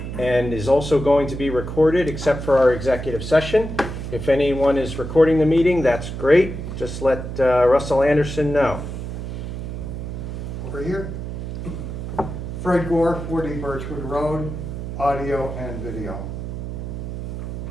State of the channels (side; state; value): right; noise; hum, 6 dB below the sound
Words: and is also going to be recorded except for our executive session. If anyone is recording the meeting, that's great. Just let Russell Anderson know. Over here. Fred Gore, 40 Birchwood Road, audio and video.